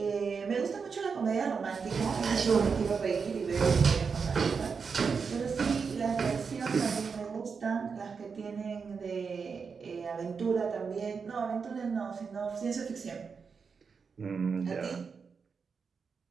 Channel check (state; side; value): quieter; left; 5.6 dB